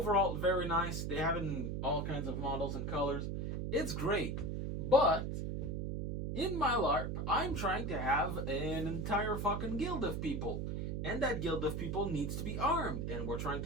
very nice. They have it in all kinds of models and colors. It's great. But in my LARP, I'm trying to have an entire fucking guild of people. And that guild of people needs to be armed. And we're trying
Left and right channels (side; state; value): right; noise; hum, 2 dB below the sound